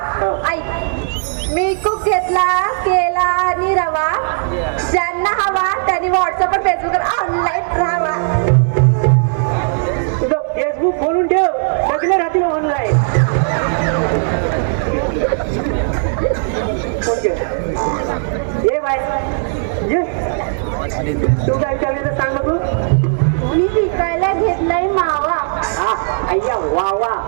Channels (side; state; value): left; silent; digital silence